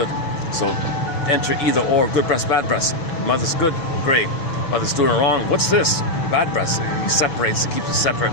So enter either or, good breast, bad breast. Mother's good, great. Mother's doing it wrong, what's this? Bad breast. He separates, he keeps it separate.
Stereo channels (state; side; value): late; right; 6.1 ms